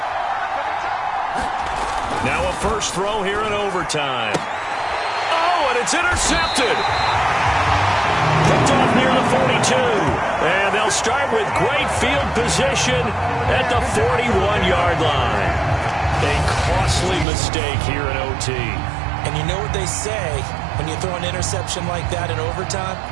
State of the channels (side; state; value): left; drops out; at 17.2 s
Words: Now a first throw here in overtime. Oh, and it's intercepted. Picked off near the 42. And they'll start with great field position at the 41-yard line. A costly mistake here in OT. And you know what they say when you throw an interception like that in overtime?